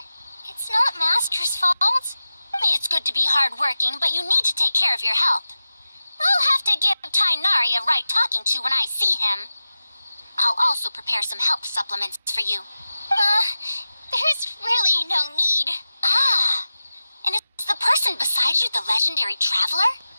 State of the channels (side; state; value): both; inverted; correlation -0.94